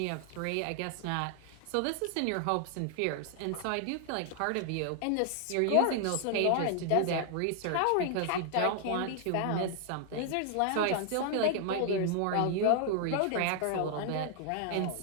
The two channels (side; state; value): both; different; correlation 0.00